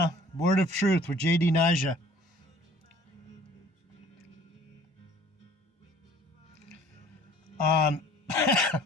Word of Truth with J.D. Nija.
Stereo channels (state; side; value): normal; both; correlation 0.52